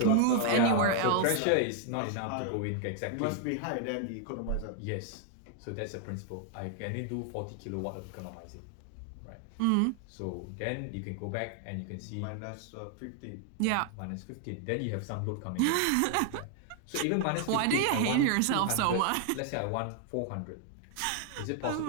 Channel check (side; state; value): both; different; correlation 0.00